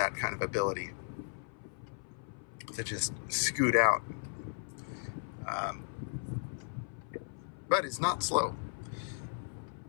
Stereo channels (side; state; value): right; silent; 54 dB below the other